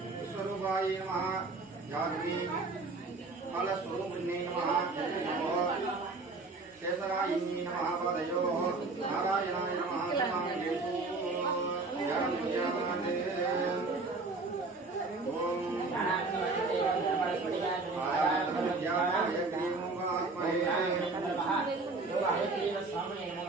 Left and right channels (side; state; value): left; quieter; 3.7 dB